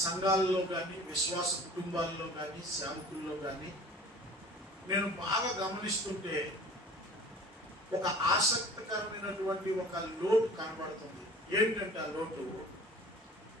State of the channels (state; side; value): normal; both; correlation 0.45